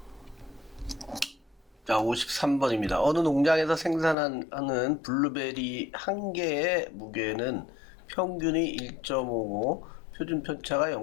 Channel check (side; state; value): right; drops out; at 4.2 s